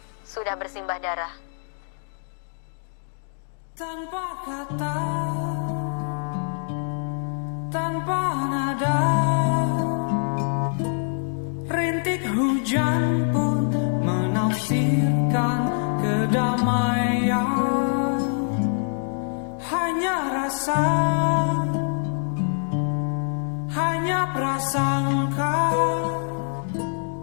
sudah bersimbah darah. Tanpa kata, tanpa nada, rintik hujan pun menafsirkan kedamaian. Hanya rasa, hanya prasangka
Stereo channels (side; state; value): right; silent; 62 dB below the other